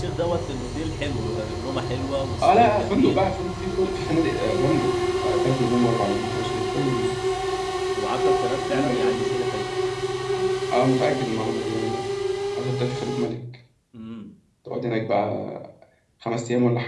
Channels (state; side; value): identical; both; correlation 1.00